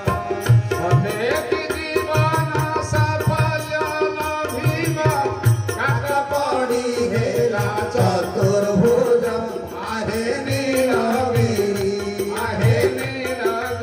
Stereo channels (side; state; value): both; identical; correlation 1.00